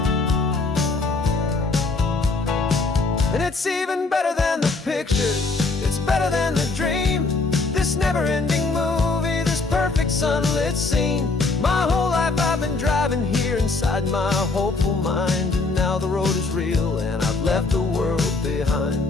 And it's even better than the pictures, it's better than the dream, this never-ending movie, this perfect sunlit scene. My whole life I've been driving here inside my hopeful mind, and now the road is real and I've left the world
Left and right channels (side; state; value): right; quieter; 3.7 dB